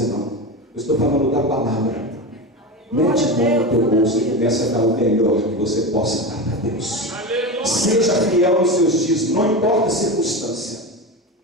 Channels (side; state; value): both; normal; correlation 0.22